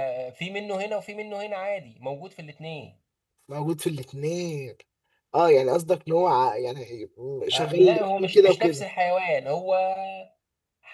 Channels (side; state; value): both; identical; correlation 1.00